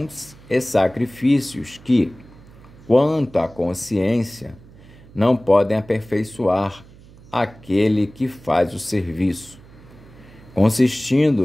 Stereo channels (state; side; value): noise; right; hum, 22 dB below the sound